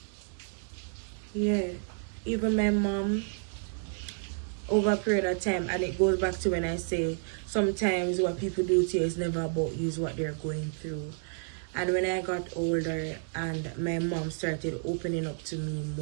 yeah. Even my mom, over a period of time, and it goes back to when I say sometimes what people do to you is never about you, is what they're going through. And when I got older and my mom started opening up to me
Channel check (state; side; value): silent; left; 57 dB below the other